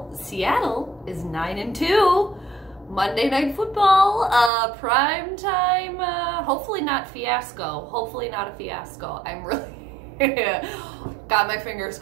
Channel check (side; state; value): left; drops out; at 4.5 s